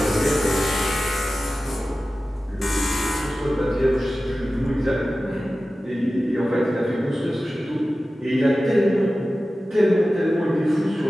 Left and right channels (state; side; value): normal; both; correlation 0.95